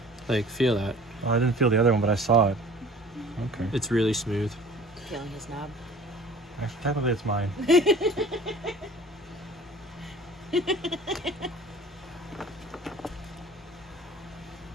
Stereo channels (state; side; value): normal; both; correlation 0.46